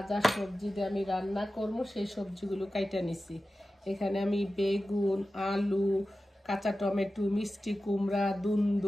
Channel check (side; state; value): both; normal; correlation 0.94